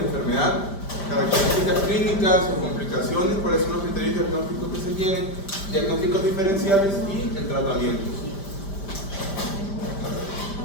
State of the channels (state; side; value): late; right; 5.0 ms